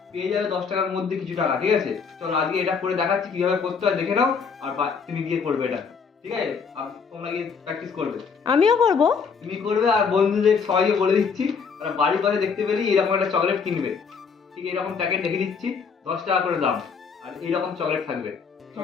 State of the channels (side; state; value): right; quieter; 5.7 dB